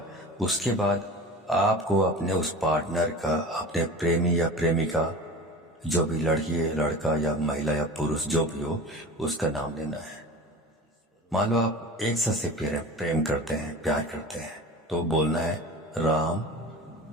उसके बाद आपको अपने उस पार्टनर का, अपने प्रेमी या प्रेमिका, जो भी लड़की है, लड़का या महिला या पुरुष जो भी हो, उसका नाम लेना है। मान लो आप एक साथ से प्रेम करते हैं, प्यार करते हैं, तो बोलना है राम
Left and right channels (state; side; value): normal; both; correlation 0.35